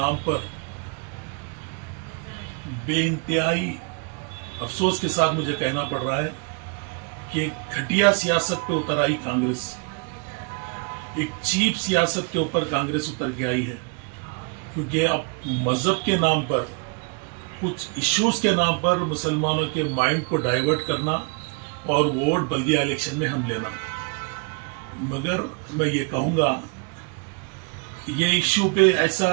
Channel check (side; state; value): left; quieter; 35.4 dB